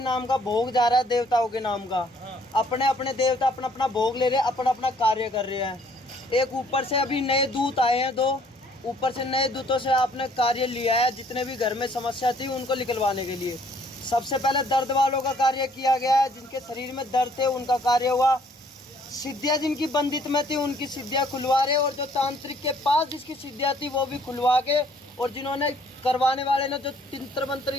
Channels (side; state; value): both; normal; correlation 0.62